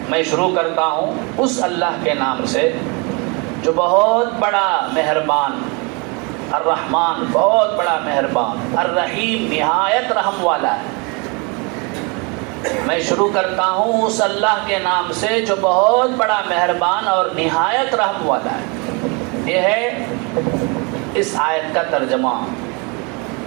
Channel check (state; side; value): quieter; left; 30.9 dB